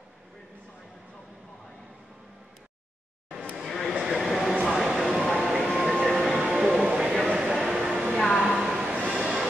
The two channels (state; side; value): normal; both; correlation 0.86